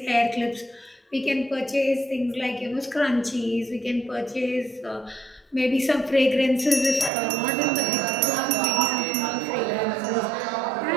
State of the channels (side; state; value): left; drops out; at 7.1 s